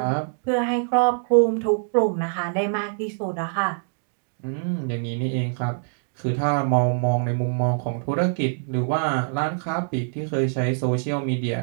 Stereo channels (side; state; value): left; silent; digital silence